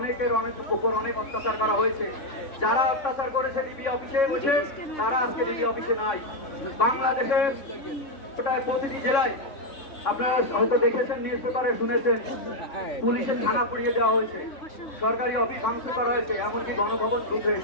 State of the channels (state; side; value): late; right; 3.6 ms